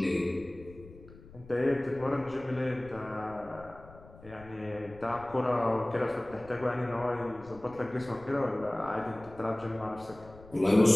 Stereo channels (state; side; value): noise; left; rumble, 20 dB below the sound